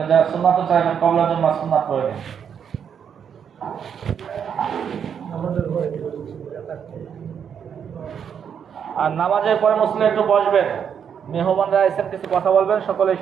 যারা সুন্নাত চাইবেন কবলার জন্য সুন্নাত করে দিন। আর নামাজের পরে মুসলিম একটু বসবেন, মেহমানরা এসে কিছু কথা বলবেন, সকলেই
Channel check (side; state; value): left; quieter; 7.8 dB